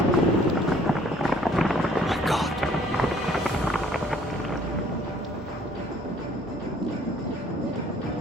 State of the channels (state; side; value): normal; both; correlation 0.59